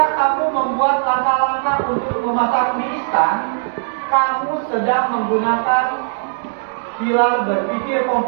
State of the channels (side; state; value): left; silent; digital silence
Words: kamu membuat langkah-langkah untuk memasak mie instan, kamu sedang menggunakan pilar berpikir